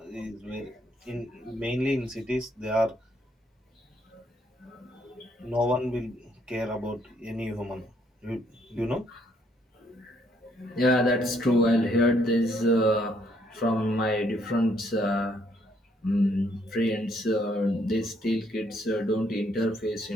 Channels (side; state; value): both; normal; correlation 0.69